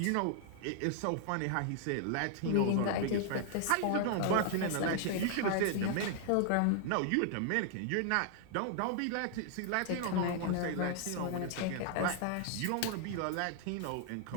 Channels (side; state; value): both; different; correlation 0.00